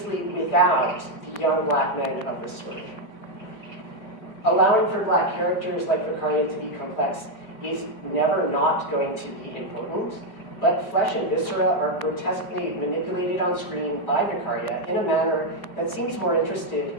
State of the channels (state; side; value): late; right; 5.0 ms